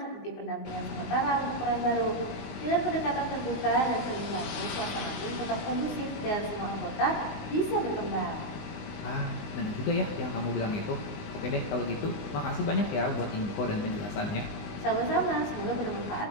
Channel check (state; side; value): late; right; 20 ms